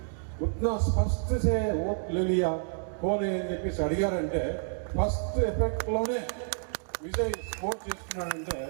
उतना स्पष्ट से वोट ले लिया, कौन है అని చెప్పేసి అడిగారంటే ఫస్ట్ ఎఫెక్ట్లోనే విజయ్ స్కోర్ చేసుకున్నాడంటే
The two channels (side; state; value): left; silent; digital silence